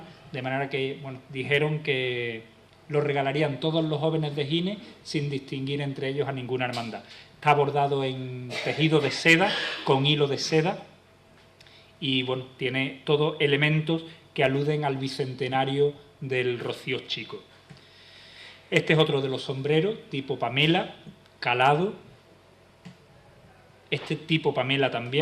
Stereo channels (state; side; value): identical; both; correlation 1.00